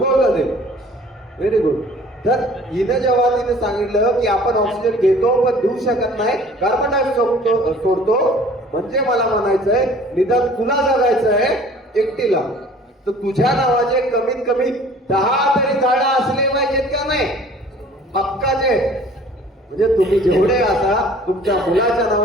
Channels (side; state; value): both; normal; correlation 0.50